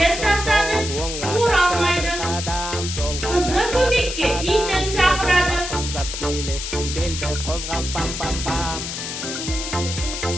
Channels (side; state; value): left; noise; hiss, 5 dB below the sound